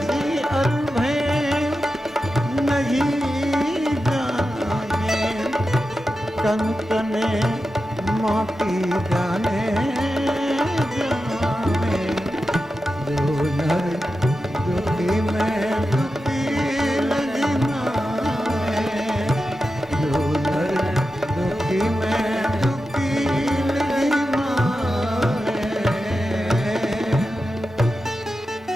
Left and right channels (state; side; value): normal; both; correlation 0.91